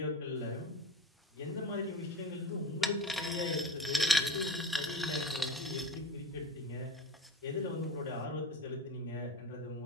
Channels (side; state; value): both; normal; correlation 0.31